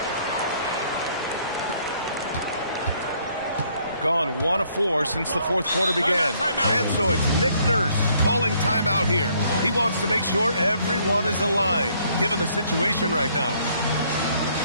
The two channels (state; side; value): inverted; both; correlation -0.66